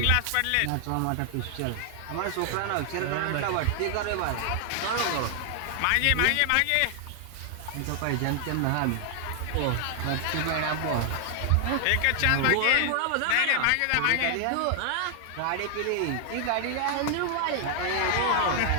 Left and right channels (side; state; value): both; different; correlation 0.00